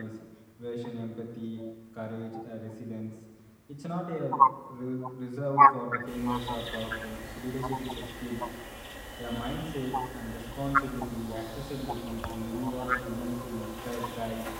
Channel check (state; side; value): identical; both; correlation 1.00